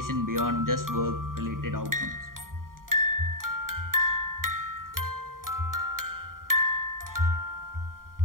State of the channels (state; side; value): late; left; 0.91 ms